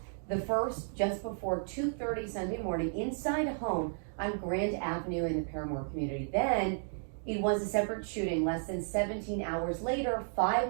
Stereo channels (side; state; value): left; silent; digital silence